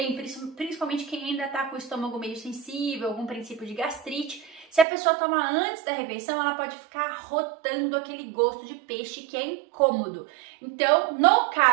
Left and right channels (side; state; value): left; drops out; at 4.9 s